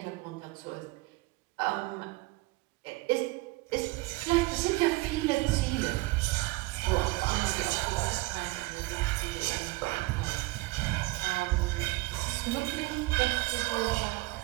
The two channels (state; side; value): quieter; left; 22.2 dB